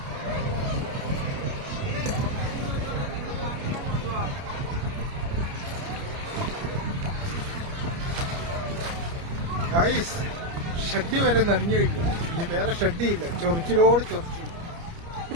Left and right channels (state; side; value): late; left; 29 ms